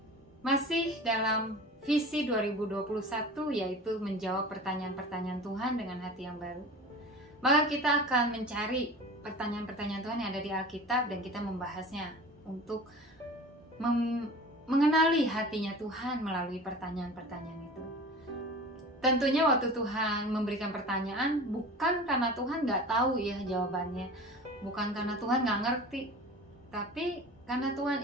masih dalam visi 2021, yaitu menjawab pertanyaan-pertanyaan Tuhan dengan hati yang baru. Maka kita akan mencari pertanyaan-pertanyaan Tuhan yang ada di Alkitab dan kita membahasnya untuk mengenali hatinya Tuhan melalui pertanyaan-pertanyaan itu. Tentunya waktu Tuhan memberikan pertanyaan, bukan karena Tuhan nggak tahu ya jawabannya, bukan karena Tuhan nggak ngerti, tapi karena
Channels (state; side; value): normal; both; correlation 0.38